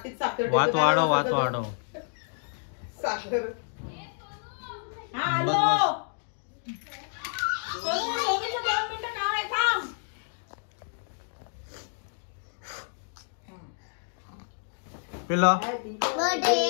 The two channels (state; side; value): silent; right; 58 dB below the other